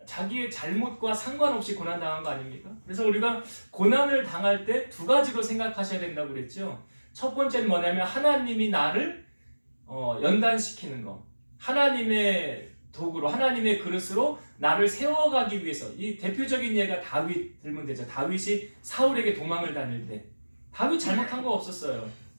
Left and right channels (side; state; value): both; inverted; correlation -1.00